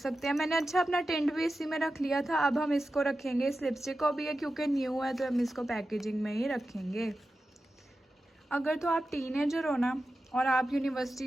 हैं। मैंने अच्छा अपना टेंट भी इसी में रख लिया था। अब हम इसको रखेंगे, इस लिपस्टिक को भी है क्योंकि न्यू है तो हम इसको पैकेजिंग में ही रखेंगे। अगर तो आप टीनेजर हो ना और आप यूनिवर्सिटी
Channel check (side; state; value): both; normal; correlation 0.92